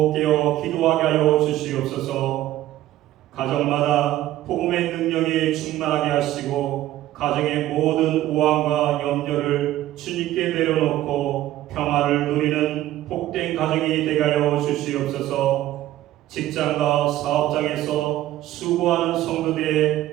깨어 기도하게 하여 주시옵소서. 가정마다 복음의 능력이 충만하게 하시고 가정의 모든 우환과 염려를 주님께 내려놓고 평화를 누리는 복된 가정이 되게 하여 주시옵소서. 직장과 사업장에서 수고하는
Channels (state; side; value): quieter; left; 14.4 dB